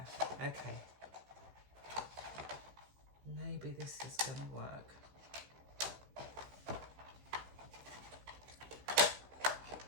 okay. Maybe this is gonna work.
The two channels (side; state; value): left; late; 15 ms